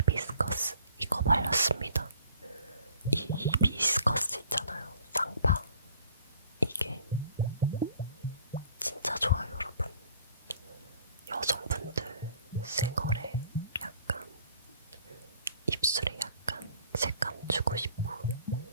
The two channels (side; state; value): both; inverted; correlation -0.55